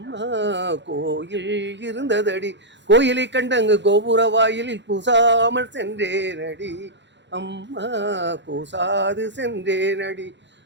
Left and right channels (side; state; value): left; late; 0.52 ms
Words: கோயில் இருந்ததடி. கோயிலை கண்டங்கு கோபுர வாயிலில் கூசாமல் சென்றேனடி அம்மா, கூசாது சென்றேனடி.